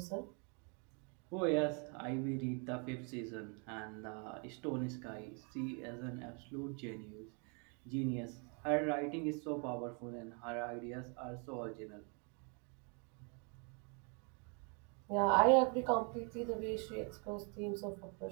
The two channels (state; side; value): quieter; left; 36.9 dB